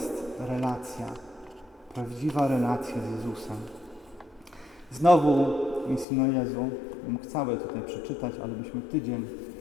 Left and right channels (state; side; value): drops out; right; at 6.1 s